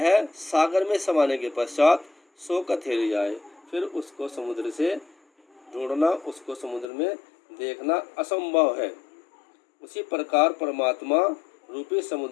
सागर में समाने के पश्चात सोकर ठहर जाए, फिर उसको समुद्र से ढूंढना, उसको समुद्र में देखना असंभव है। उसी प्रकार परमात्मा रूपी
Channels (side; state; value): right; drops out; at 6.9 s